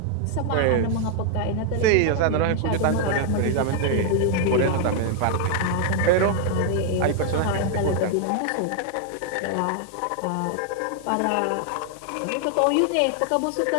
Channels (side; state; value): both; different; correlation 0.00